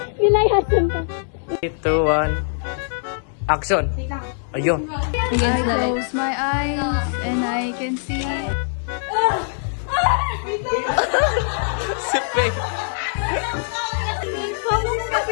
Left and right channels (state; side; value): silent; right; 64 dB below the other